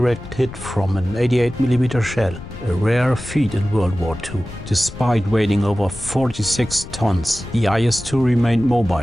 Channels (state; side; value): noise; left; rumble, 13 dB below the sound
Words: hit from an 88 mm shell, a rare feat in World War II. Despite weighing over 46 tons, the IS-2 remained